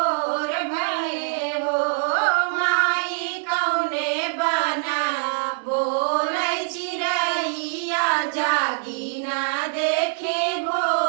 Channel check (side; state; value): left; silent; 62 dB below the other